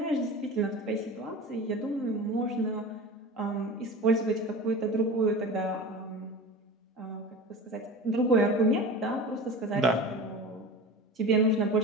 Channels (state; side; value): normal; both; correlation 0.33